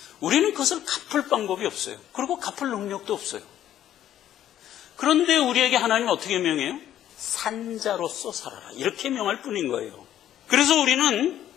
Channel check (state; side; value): quieter; right; 11.5 dB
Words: 우리는 그것을 갚을 방법이 없어요. 그리고 갚을 능력도 없어요. 그런데 우리에게 하나님은 어떻게 명해요? 산자로서 살아라 이렇게 명할 뿐인 거예요. 그래서 우리는